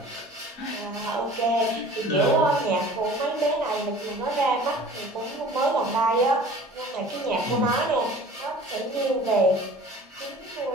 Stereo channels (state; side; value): normal; both; correlation 0.45